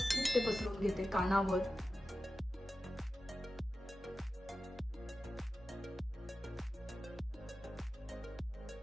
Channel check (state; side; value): normal; both; correlation 0.93